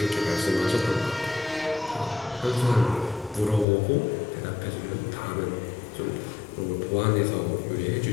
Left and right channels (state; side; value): drops out; right; at 3.7 s